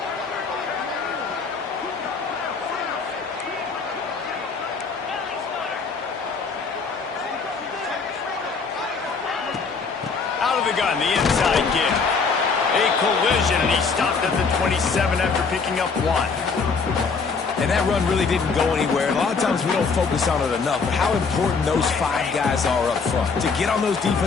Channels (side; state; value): right; quieter; 4.9 dB